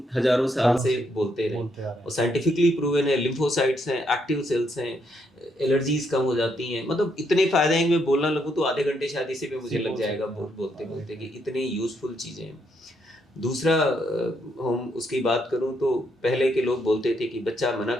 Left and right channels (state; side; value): normal; both; correlation 0.75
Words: हजारों साल सालों से से बोलते रहे, बोलते आ रहे हैं। और साइंटिफिकली प्रूवन है। लिम्फोसाइट्स हैं, एक्टिव सेल्स हैं, एलर्जीज कम हो जाती हैं, मतलब इतने फायदे हैं कि मैं बोलना लगूँ तो आधे घंटे शायद इसी पे मुझे इसी लग बोल जाएगा सकते हैं आप। बोलते बोलते, राइट, कि राइट। इतनी यूजफुल चीज़ें हैं। दूसरा, हम उसकी बात करूं तो पहले के लोग बोलते थे कि बच्चा मना